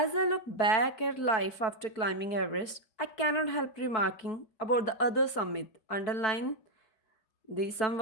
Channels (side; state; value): right; late; 4.6 ms